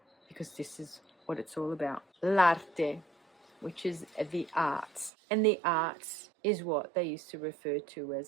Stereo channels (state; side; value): drops out; left; at 5.1 s